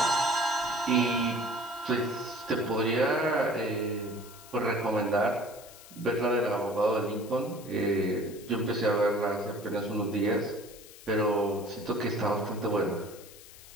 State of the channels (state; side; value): noise; left; hiss, 19 dB below the sound